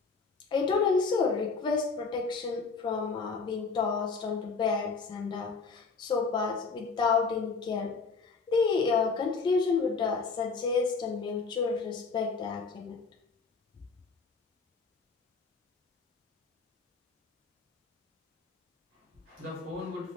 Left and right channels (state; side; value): quieter; right; 4.6 dB